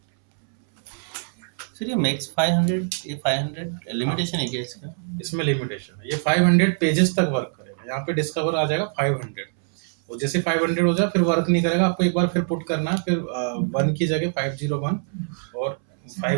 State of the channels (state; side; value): silent; left; 63 dB below the other